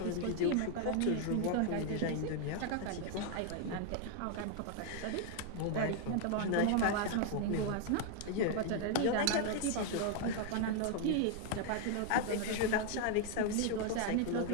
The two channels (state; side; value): different; both; correlation 0.00